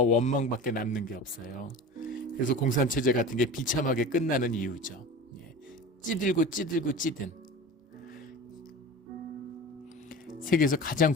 원망밖에 남는 게 없어요. 그래서 공산체제 같은 게 비참하게 끝나는 이유죠. 찌들고 찌든. 세계에서 가장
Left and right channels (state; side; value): normal; both; correlation 0.34